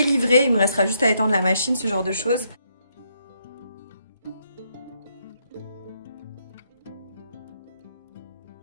Il me restera juste à étendre la machine, ce genre de choses.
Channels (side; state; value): both; inverted; correlation -0.75